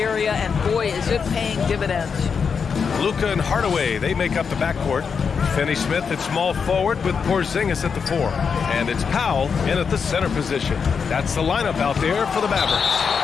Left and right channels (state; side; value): quieter; right; 6.0 dB